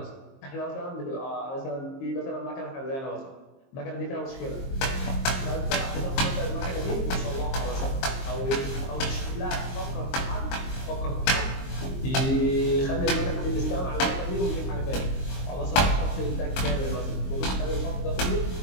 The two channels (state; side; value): late; right; 22 ms